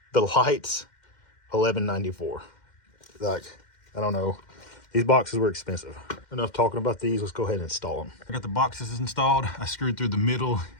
The lights, $11.94. Like, I don't know. These boxes were expensive. Enough talking about these. Let's go ahead and install them. I got the boxes installed. I screwed through the middle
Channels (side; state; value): right; late; 2.1 ms